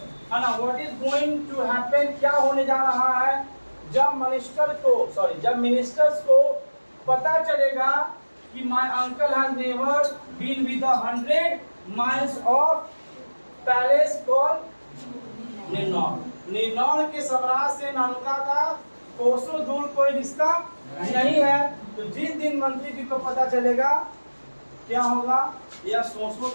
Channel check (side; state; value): both; inverted; correlation -1.00